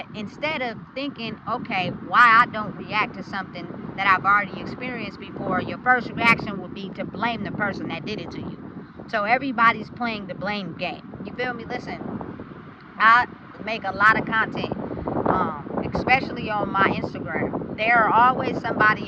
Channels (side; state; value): both; identical; correlation 1.00